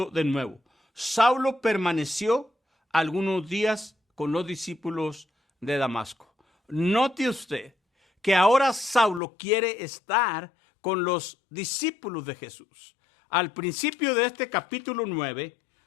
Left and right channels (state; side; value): drops out; right; at 9.2 s